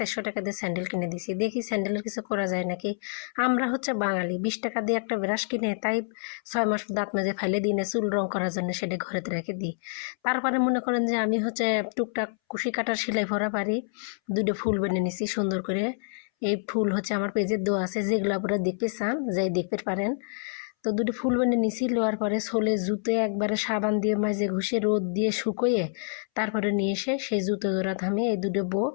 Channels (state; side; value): silent; right; 60 dB below the other